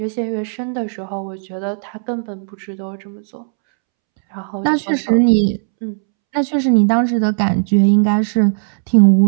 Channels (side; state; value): left; silent; 68 dB below the other